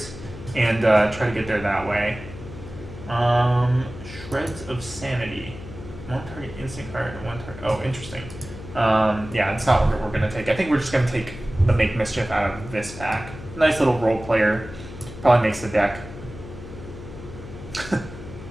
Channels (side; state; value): left; noise; hum, 13 dB below the sound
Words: and try to get there that way. Shreds of Sanity. 1 target instant card and 1 target... Oh, interesting. Yeah, it's not what we're going to take. I think we're just going to take the Make Mischief out of this pack. Nice little role player. Probably makes the deck.